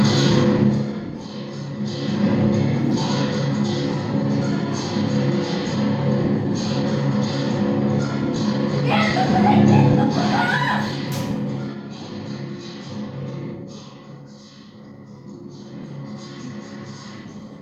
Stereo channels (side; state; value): both; identical; correlation 1.00